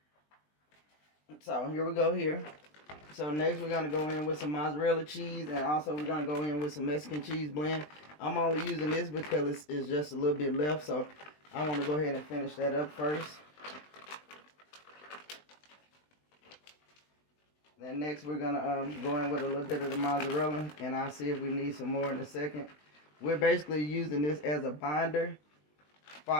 So here we go here. So next we're going to go in with some mozzarella cheese, and also we're going to go in with some Mexican cheese blend. I'm only using this because it's just a little bit left, so I want to go ahead and finish that up first. Then next we're going to go in with a little bit of the mozzarella, and I'll see if we need some more in a second. We're basically using this as a binder for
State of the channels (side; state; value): right; late; 20 ms